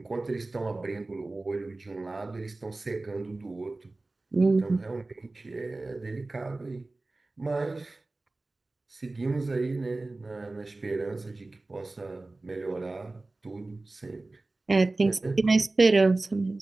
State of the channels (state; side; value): quieter; left; 3.1 dB